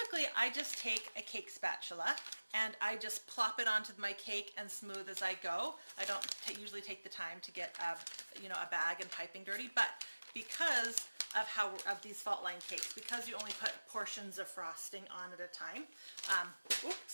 I just take a cake spatula and I just plop it onto my cake and smooth as I go. I don't usually take the time to get a bag and piping dirty, but because of these fault line cakes, because you only put portions of frosting on at a time.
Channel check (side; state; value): both; inverted; correlation -1.00